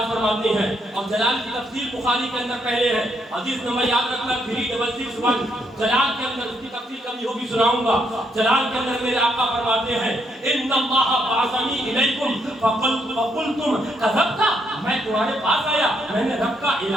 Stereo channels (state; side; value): normal; both; correlation 0.75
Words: فرماتے ہیں، اور جلال کی تفسیر بخاری کے اندر پہلے ہے، حدیث نمبر یاد رکھنا 366. جلال کے اندر اس کی تفسیر کبھی ہوگی سناؤں گا. جلال کے اندر میرے آقا فرماتے ہیں ان اللہ بعثنی الیکم فقلتم کذبت، میں تمہارے پاس آیا، میں نے رب کا